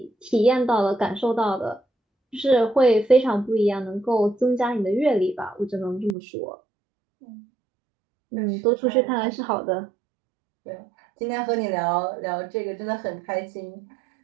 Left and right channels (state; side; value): drops out; left; at 6.2 s